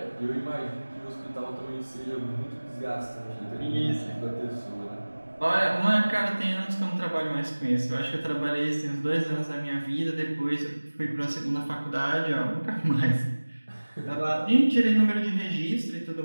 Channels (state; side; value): inverted; both; correlation -1.00